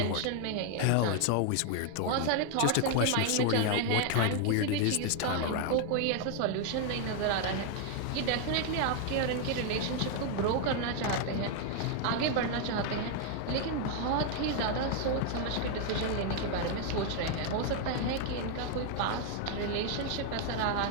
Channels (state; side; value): different; both; correlation 0.00